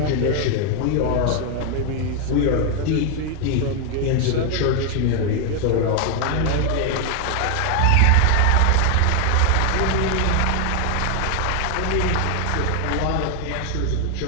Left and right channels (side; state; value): both; different; correlation 0.00